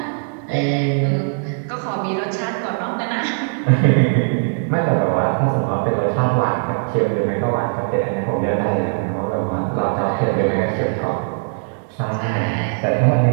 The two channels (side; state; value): left; silent; digital silence